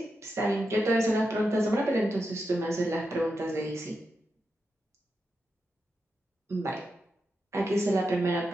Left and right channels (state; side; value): normal; both; correlation 0.87